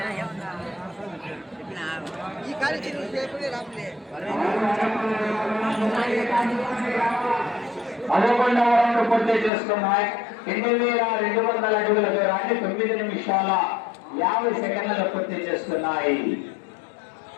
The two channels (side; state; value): right; drops out; at 9.5 s